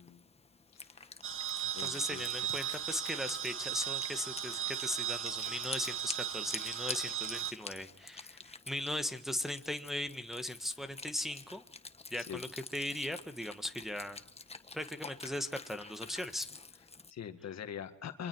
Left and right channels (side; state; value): both; normal; correlation 0.46